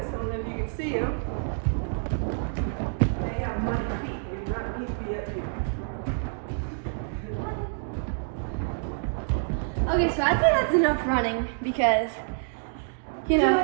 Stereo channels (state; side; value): silent; left; digital silence